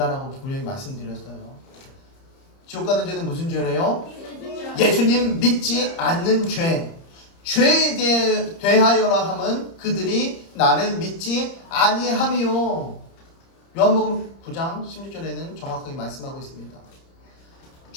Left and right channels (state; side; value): late; right; 30 ms